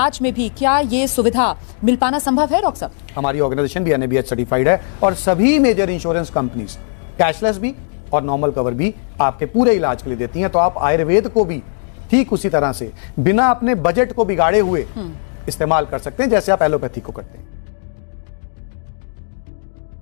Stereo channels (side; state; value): right; silent; digital silence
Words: में भी क्या ये सुविधा मिल पाना संभव है? डॉक्टर साहब, हमारी ऑर्गेनाइजेशन भी एनएबीएच सर्टिफाइड है और सभी मेजर इंश्योरेंस कंपनीज कैशलेस भी और नॉर्मल कवर भी आपके पूरे इलाज के लिए देती हैं। तो आप आयुर्वेद को भी ठीक उसी तरह से बिना अपने बजट को बिगाड़े हुए इस्तेमाल कर सकते हैं जैसे आप एलोपैथी को करते हैं।